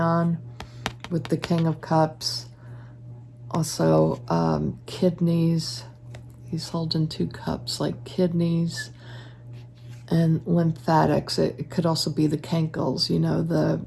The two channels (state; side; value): identical; both; correlation 1.00